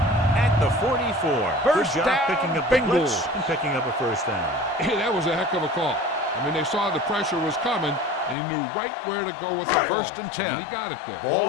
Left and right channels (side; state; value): right; drops out; at 8.3 s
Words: at the 44. First Good job down, picking up the blitz Bengals. and picking up a first down. Hey, that was a heck of a call. I mean, they saw the pressure was coming, and he knew right where to go with the ball. First and 10. And he got it there.